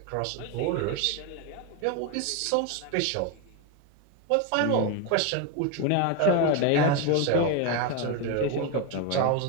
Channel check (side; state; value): both; different; correlation 0.02